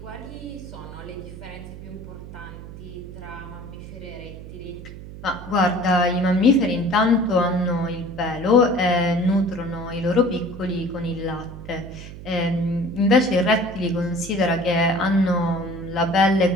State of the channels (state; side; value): noise; right; hum, 13 dB below the sound